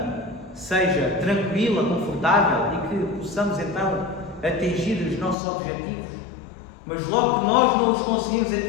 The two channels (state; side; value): drops out; right; at 5.4 s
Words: seja tranquila, confortável e que possamos então atingir os nossos objetivos. Mas logo que nós não os conseguimos